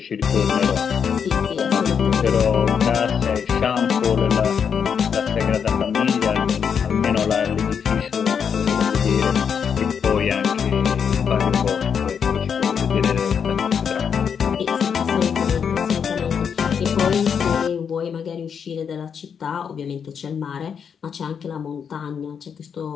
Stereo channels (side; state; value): right; quieter; 7.1 dB